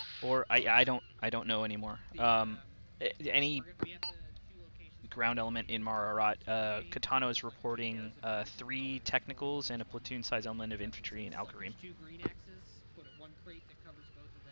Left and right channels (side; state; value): both; inverted; correlation -1.00